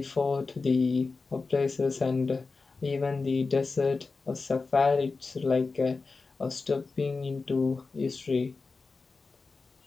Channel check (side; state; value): right; quieter; 4.1 dB